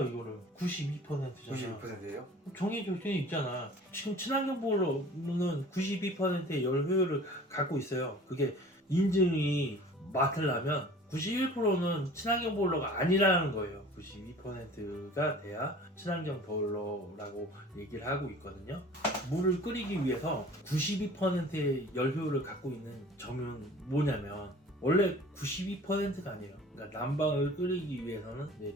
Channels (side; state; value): both; normal; correlation 0.45